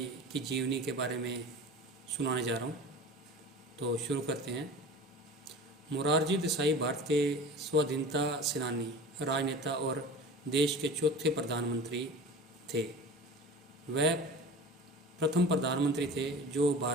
की जीवनी के बारे में सुनाने जा रहा हूँ। तो शुरू करते हैं। मोरारजी देसाई भारत के स्वाधीनता सेनानी, राजनेता और देश के चौथे प्रधानमंत्री थे। वह प्रथम प्रधानमंत्री थे जो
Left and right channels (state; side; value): normal; both; correlation 0.36